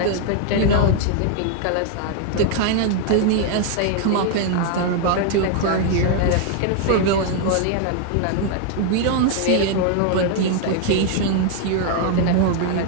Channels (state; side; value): different; both; correlation 0.00